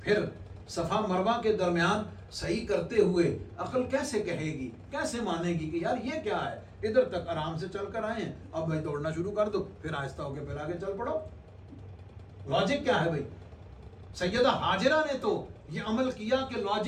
پھر صفا مروہ کے درمیان صحیح کرتے ہوئے عقل کیسے کہے گی، کیسے مانے گی کہ یار یہ کیا ہے؟ ادھر تک آرام سے چل کر آئے ہیں، اب بھائی دوڑنا شروع کر دو، پھر آہستہ ہو کے پھر آگے چل پڑو۔ لاجک کیا ہے بھائی؟ سیدہ ہاجرہ نے تو یہ عمل کیا کہ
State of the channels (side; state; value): both; identical; correlation 1.00